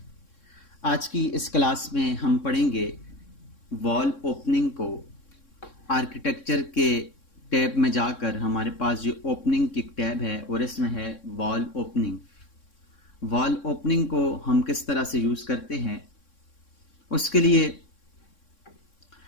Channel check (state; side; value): late; right; 3.6 ms